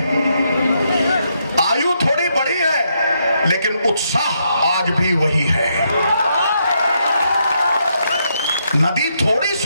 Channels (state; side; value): inverted; both; correlation -0.78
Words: आयु थोड़ी बढ़ी है, लेकिन उत्साह आज भी वही है। नदी थोड़ी